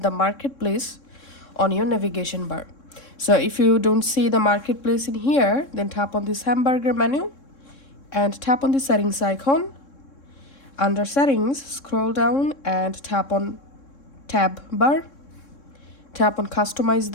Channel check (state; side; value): late; right; 3.7 ms